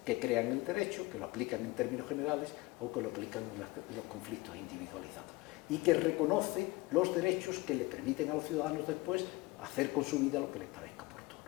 que crean el derecho, que lo aplican en términos generales o que lo aplican en los conflictos individualizados, y que reconoce los derechos que le permiten a los ciudadanos después hacer con su vida lo que les parezca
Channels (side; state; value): right; quieter; 21.7 dB